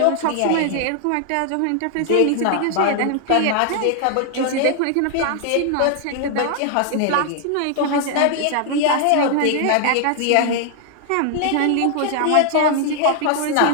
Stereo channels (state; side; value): different; both; correlation 0.00